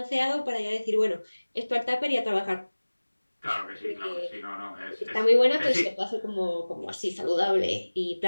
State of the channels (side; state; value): both; inverted; correlation -1.00